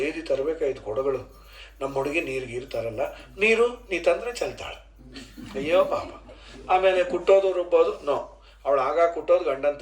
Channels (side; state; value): both; identical; correlation 1.00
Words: ತರಬೇಕಾಯ್ತು ಕೊಡಗಳು. ನಮ್ಮ ಹುಡುಗಿ ನೀರು ಗೀರು ತರಲ್ಲ, ನೀರು ನೀ ತಂದರೆ ಚೆಲ್ತಾಳೆ. ಅಯ್ಯೋ ಪಾಪ. ಆಮೇಲೆ ಕುಟ್ಟೋದು ರುಬ್ಬೋದು ನೋ, ಅವಳು ಆಗ ಕುಟ್ಟೋದು ಗಂಡನ